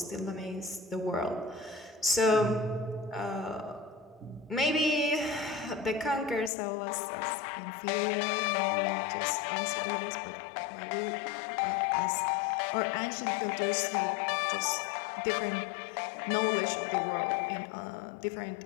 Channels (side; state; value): right; drops out; at 6.5 s